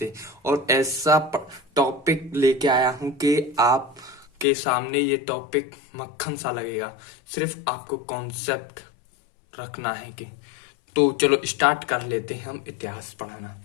और ऐसा टॉपिक लेके आया हूं कि आप के सामने ये टॉपिक मक्खन सा लगेगा। सिर्फ आपको कॉन्सेप्ट रखना है कि तो चलो स्टार्ट कर लेते हैं हम इतिहास पढ़ाना।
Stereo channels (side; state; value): right; drops out; at 4.5 s